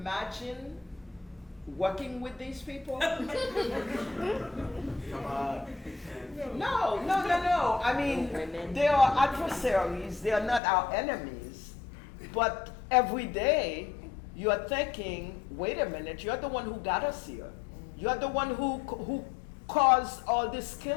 working with these people? No. I mean, they are adversaries. They are not our enemies. But every day, you're thinking, wait a minute, you're the one who got us here. You're the one who caused all this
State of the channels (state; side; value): drops out; right; at 10.6 s